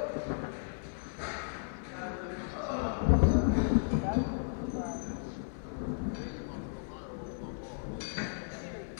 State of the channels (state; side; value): silent; right; 55 dB below the other